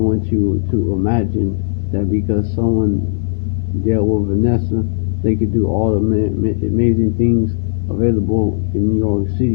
you to imagine that because someone dealt with Vanessa, they could do all the amazing things available in New York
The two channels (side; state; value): right; silent; digital silence